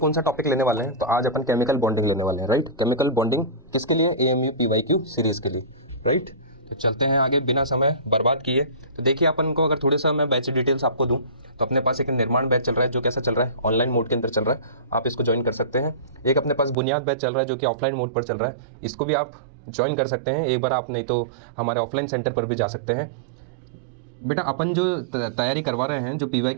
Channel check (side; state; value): left; drops out; at 16.8 s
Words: सा टॉपिक लेने वाले हैं? तो आज अपन केमिकल बॉन्डिंग लेने वाले हैं, राइट। केमिकल बॉन्डिंग किसके लिए? AMU PYQ सीरीज के लिए, राइट। तो चलते हैं आगे बिना समय बर्बाद किए। तो देखिए, अपन को अगर थोड़े सा मैं बैच डिटेल्स आपको दूं तो अपने पास एक निर्माण बैच चल रहा है जो कैसा चल रहा है, ऑनलाइन मोड के अंदर चल रहा है। आप इसको ज्वाइन कर सकते हैं। एक अपने पास बुनियाद बैच चल रहा है जो कि ऑफलाइन मोड पर चल रहा है, इसको भी आप ज्वाइन कर सकते हैं। एक बार आप नहीं तो हमारे ऑफलाइन सेंटर पर भी जा सकते हैं। बेटा, अपन जो तैयारी करवा रहे हैं, जो